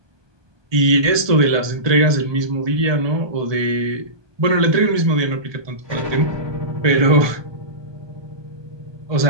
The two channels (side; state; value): left; late; 1.2 ms